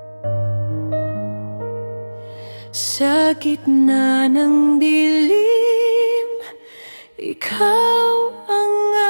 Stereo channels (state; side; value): inverted; both; correlation -1.00